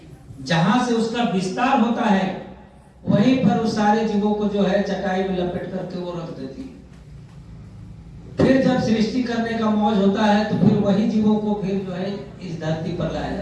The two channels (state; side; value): identical; both; correlation 1.00